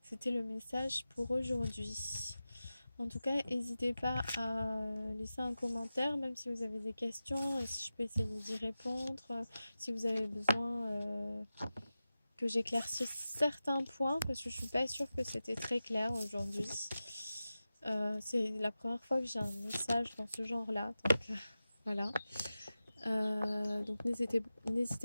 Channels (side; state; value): both; inverted; correlation -0.94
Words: C'était le message pour aujourd'hui. En tout cas, n'hésitez pas à laisser un commentaire, même si vous avez des questions, et si je peux essayer d'y répondre, si vous avez besoin que j'éclaircisse certains points, parce que je suis pas sûre que c'était très clair aujourd'hui. C'est la première fois que j'ai un message dans ce genre-là, donc voilà. Donc n'hésitez